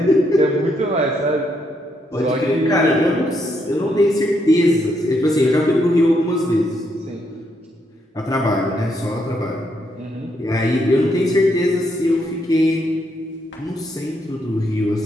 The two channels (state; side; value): normal; both; correlation 0.76